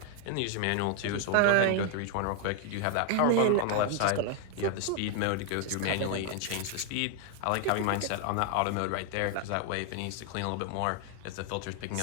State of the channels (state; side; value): different; both; correlation 0.00